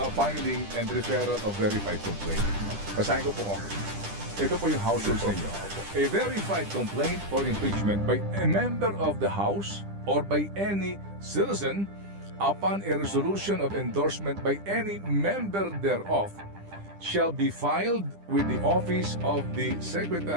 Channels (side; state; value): left; late; 10 ms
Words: filing and referral of verified complaint, basahin ko po. Ito po yung house rules ninyo. A verified complaint or impeachment by a member of the House or by any citizen upon a resolution of endorsement by any member thereof shall be filed with the office of the